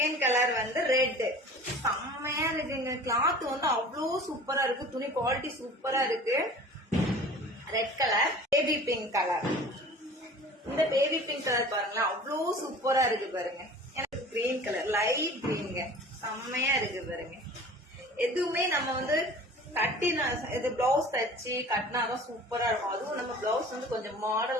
கலர் வந்து ரெட், செம்மையா இருக்குங்க. கிளாத் வந்து அவ்வளோ சூப்பரா இருக்கு, துணி குவாலிட்டி சூப்பரா இருக்கு. Red colour. Baby pink colour. இந்த பேபி பிங்க் கலர் பாருங்களேன், அவ்வளோ சூப்பரா இருக்கு பாருங்க. எனக்கு கிரீன் கலர், லைட் கிரீனுங்க, செம்மையா இருக்கு பாருங்க. எதுவுமே நம்ம வந்து கட்டினா இது பிளவுஸ் தச்சு கட்டினாதான் சூப்பரா இருக்கும். அதுவும் நம்ம பிளவுஸ் வந்து கொஞ்சம்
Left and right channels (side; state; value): both; normal; correlation 0.43